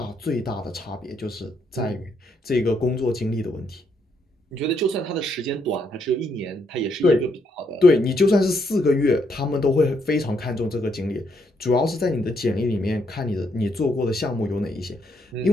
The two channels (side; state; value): both; normal; correlation 0.75